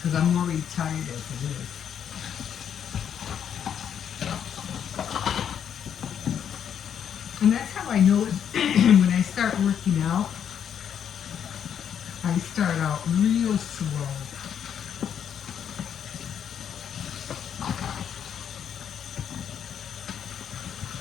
I'm already tired as it is. And that's how I know when I start working out. I start out real slow.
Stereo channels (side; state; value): right; quieter; 8.6 dB